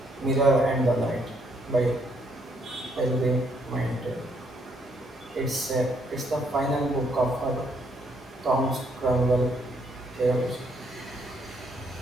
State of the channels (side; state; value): both; normal; correlation 0.71